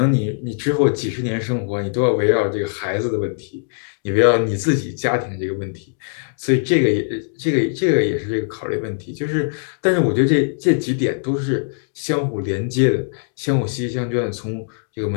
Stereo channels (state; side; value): silent; right; digital silence